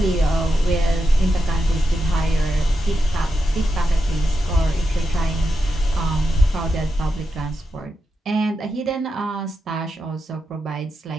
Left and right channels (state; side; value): normal; both; correlation 0.87